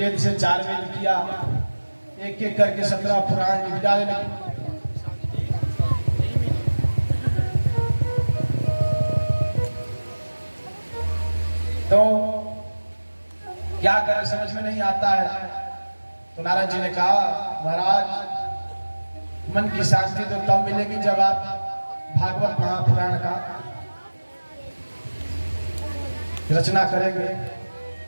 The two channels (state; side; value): inverted; both; correlation -1.00